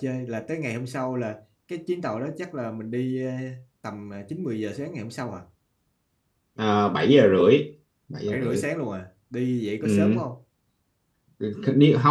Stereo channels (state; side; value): identical; both; correlation 1.00